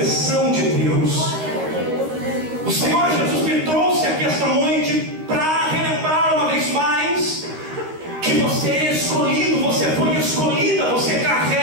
de Deus. O Senhor Jesus me trouxe aqui esta noite para relembrar uma vez mais que você é escolhido, você foi escolhida, você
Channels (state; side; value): late; left; 13 ms